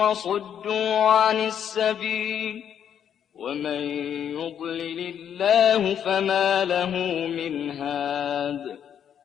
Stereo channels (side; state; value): right; quieter; 8.9 dB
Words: عن السبيل ومن يضلل الله فما له من هاد